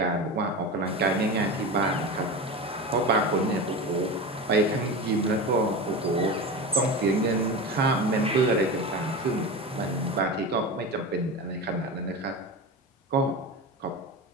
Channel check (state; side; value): normal; both; correlation 0.26